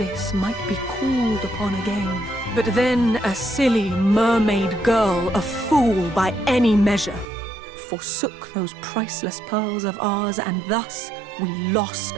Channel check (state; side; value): drops out; left; at 7.2 s